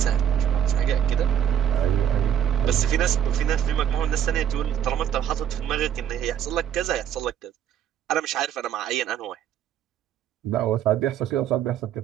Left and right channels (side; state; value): left; quieter; 9.7 dB